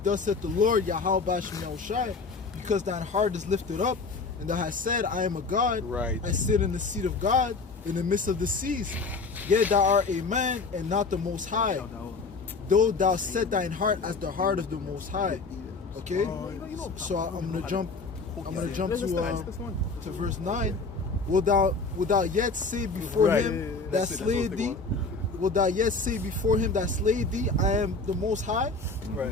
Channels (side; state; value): right; quieter; 4.0 dB